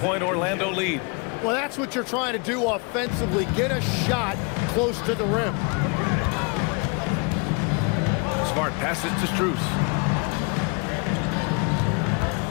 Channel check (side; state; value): right; quieter; 31.9 dB